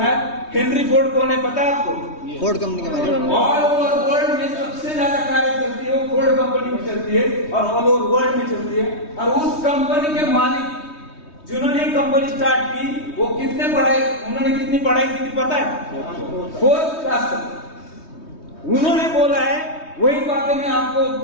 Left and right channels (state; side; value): late; right; 3.2 ms